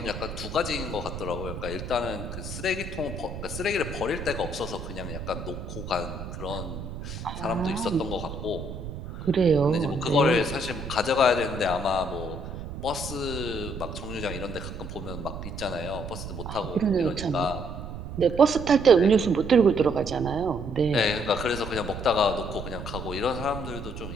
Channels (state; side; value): noise; right; rumble, 8 dB below the sound